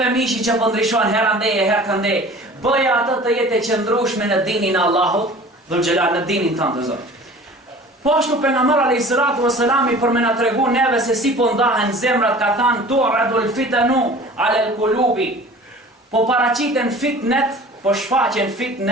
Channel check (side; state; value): both; normal; correlation 0.44